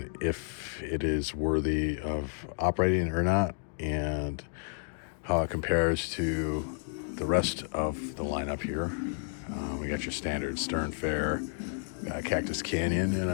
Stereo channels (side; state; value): right; silent; digital silence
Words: if it is worthy of operating or not, and how it compares to the rest of the lineup here. We got your standard Stern Fair, Cactus Canyon, and